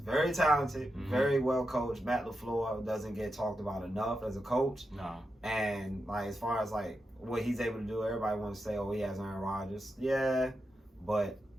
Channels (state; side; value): normal; both; correlation 0.88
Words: talented, very well coached. Matt LaFleur doesn't get talked about enough as a coach. Nah. And, like, as far as, like, what he's able to do, everybody wants to say, oh, he has Aaron Rodgers. Yeah, but,